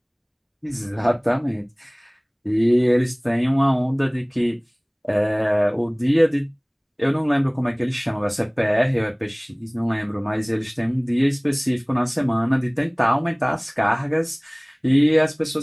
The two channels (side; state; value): both; identical; correlation 1.00